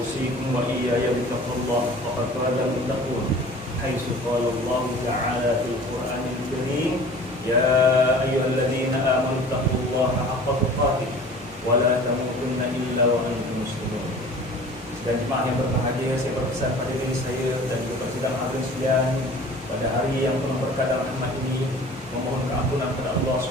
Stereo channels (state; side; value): normal; both; correlation 0.44